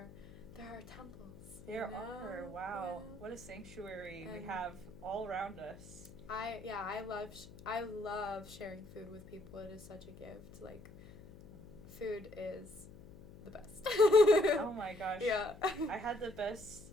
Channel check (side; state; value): left; noise; hum, 18 dB below the sound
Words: they're our temples. There are. Wow. Yeah. What a sanctuary we have all around us. I love sharing food with people. It is such a gift. Like, food is the best. Oh my gosh. Yeah. I had the best